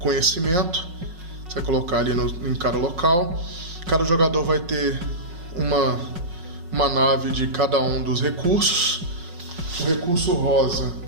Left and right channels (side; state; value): left; late; 5.4 ms